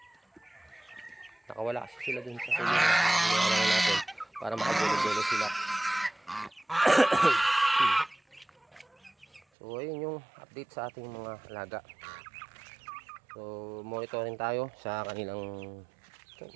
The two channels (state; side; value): drops out; left; at 9.4 s